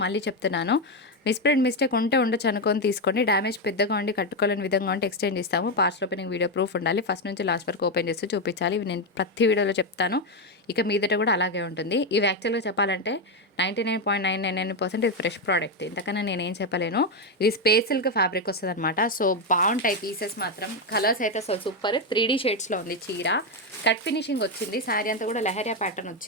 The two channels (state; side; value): normal; both; correlation 0.07